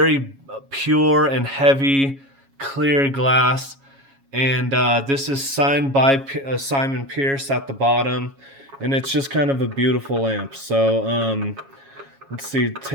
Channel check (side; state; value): left; late; 7.3 ms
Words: pure and heavy, clear glass. And this is signed by Simon Pierce at the bottom, and it's just kind of a beautiful lamp. So let's see,